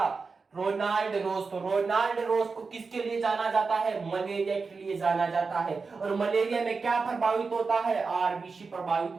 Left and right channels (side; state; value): left; quieter; 4.6 dB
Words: रोनाल्ड रोज। तो रोनाल्ड रोज को किसके लिए जाना जाता है? मलेरिया के लिए जाना जाता है। और मलेरिया में क्या प्रभावित होता है? आरबीसी प्रभावित